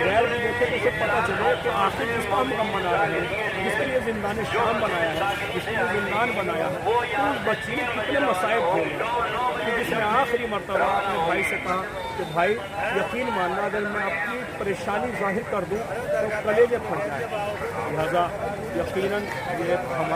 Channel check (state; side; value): identical; both; correlation 1.00